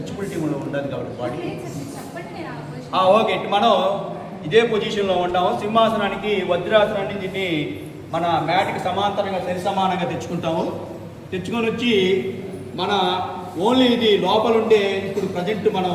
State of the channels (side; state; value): both; identical; correlation 1.00